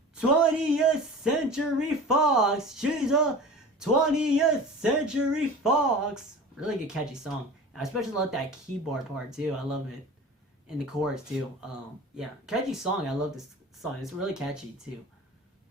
20th Century Fox. She's a 20th Century Fox. Really good catchy song. I especially love that keyboard part too. I love it. And the chorus too. Yeah, catchy song. I love this song. It's really catchy too.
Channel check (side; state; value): both; normal; correlation 0.37